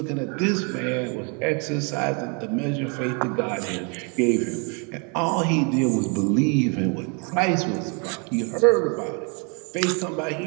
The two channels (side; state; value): left; quieter; 35.3 dB